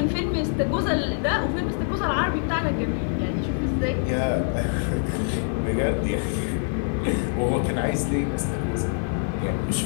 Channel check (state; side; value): silent; right; 62 dB below the other